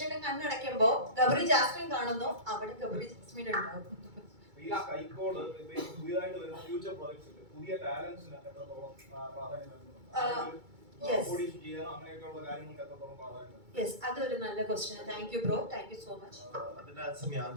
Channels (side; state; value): left; late; 2.3 ms